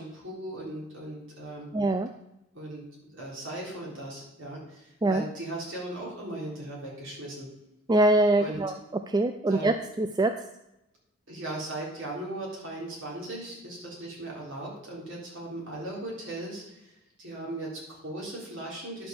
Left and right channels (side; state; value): both; normal; correlation 0.53